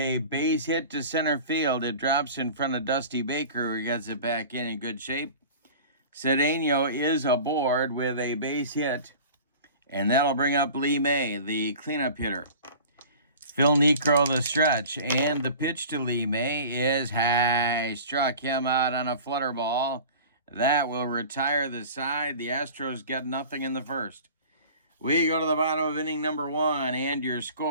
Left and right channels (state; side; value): inverted; both; correlation -0.41